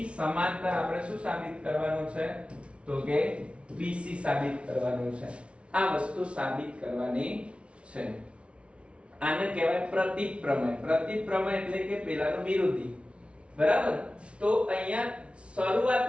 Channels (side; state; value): left; late; 0.060 ms